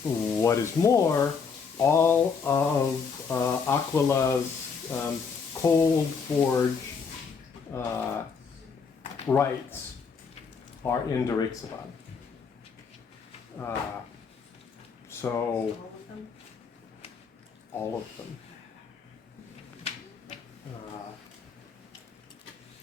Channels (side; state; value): right; quieter; 5.7 dB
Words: What is more, all of Aquila's cold forge rights are in Drexabad. So all of them.